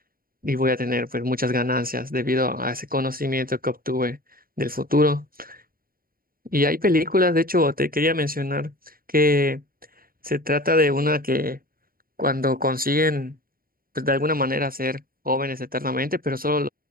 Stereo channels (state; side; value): late; left; 0.42 ms